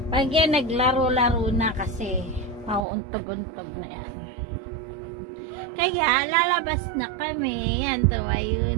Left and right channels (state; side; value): drops out; left; at 2.9 s